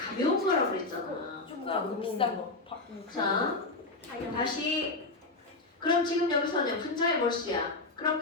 거라고 그랬잖아. 조그맣고 비싼 거. 자, 다시. 그럼 지금 여기서는 분자의 몰수야. 그럼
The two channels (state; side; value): quieter; right; 3.2 dB